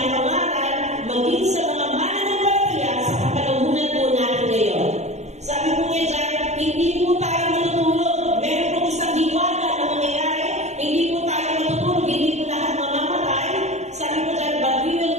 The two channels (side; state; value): left; late; 0.33 ms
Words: maging sa mga mananampalataya sa kapanahunan po natin ngayon. Sabi po niya dyan, hindi po tayo matutulog. Meron po isang hiwaga na mangyayari. Hindi po tayo matutulog, hindi po lahat mamamatay. Sabi po dyan, but we will